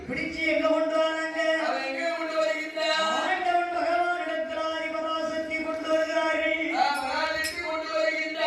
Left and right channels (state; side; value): identical; both; correlation 1.00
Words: பிடிச்சு எங்க கொண்டு வராங்க? அவன் எங்க கொண்டு வருகின்றான் ஆண்டவன் பகவான் இடத்துல பராசக்தி கொண்டு வருகிறார்கள். பராசக்தி கொண்டு